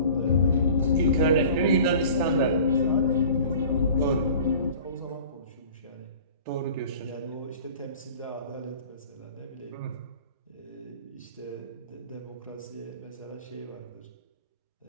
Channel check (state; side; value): inverted; both; correlation -0.44